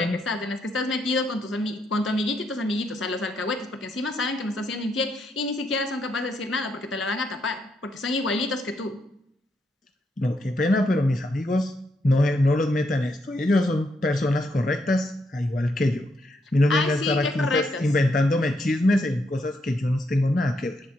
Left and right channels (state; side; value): normal; both; correlation 0.78